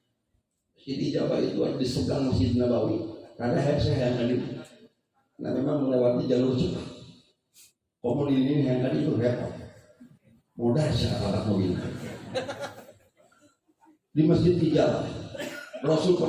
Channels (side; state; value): both; identical; correlation 1.00